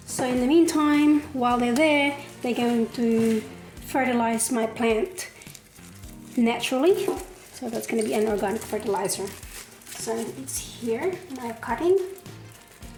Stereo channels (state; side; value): identical; both; correlation 1.00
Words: So in the meantime, while they're there, they're going to fertilize my plant naturally. So that's going to be an organic fertilizer. So it's here, my cutting.